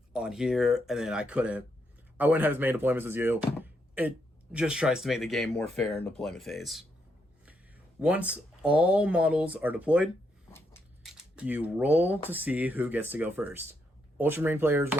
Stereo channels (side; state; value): both; normal; correlation 0.78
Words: on here and then I wouldn't have as many deployments as you. It just tries to make the game more fair in deployment phase. Once all models are deployed, you roll to see who gets to go first. Ultramarine players